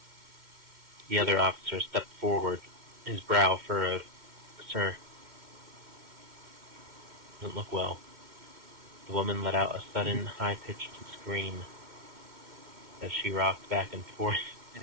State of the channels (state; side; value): late; left; 2.1 ms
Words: The other officer stepped forward, his brow furrowed. "Sir, doesn't look well." The woman let out a sudden, high-pitched scream as she rocked back and forth.